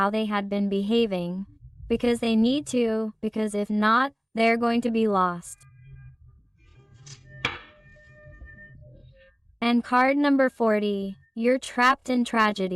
they had been behaving. Because they need to, because if not, they're going to be lost. And card number 40, you're trapped in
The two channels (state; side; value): identical; both; correlation 1.00